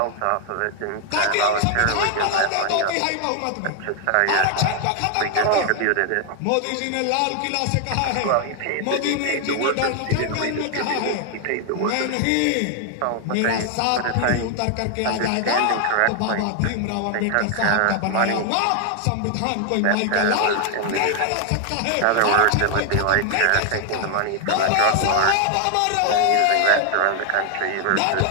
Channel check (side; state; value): both; different; correlation 0.00